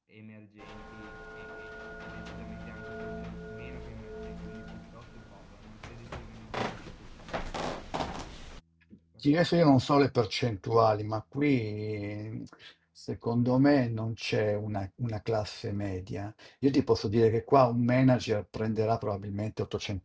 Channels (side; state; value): both; identical; correlation 1.00